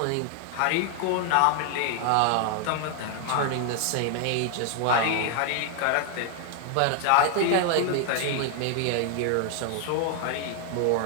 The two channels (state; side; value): different; both; correlation 0.00